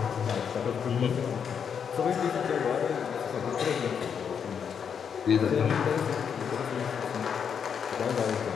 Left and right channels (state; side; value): quieter; right; 7.3 dB